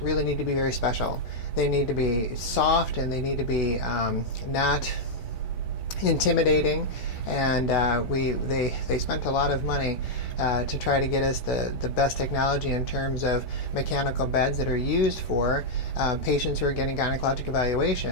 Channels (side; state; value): right; late; 16 ms